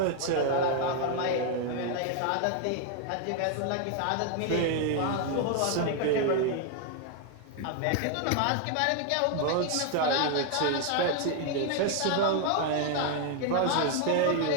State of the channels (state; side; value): different; both; correlation 0.00